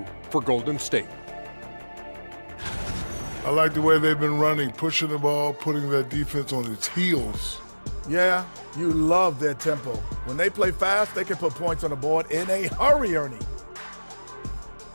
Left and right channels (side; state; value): both; inverted; correlation -1.00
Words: for Golden State. I like the way they've been running, pushing the ball, putting that defense on its heels. Yeah, you love their tempo. When they play fast, they can put points on the board in a hurry, Ernie.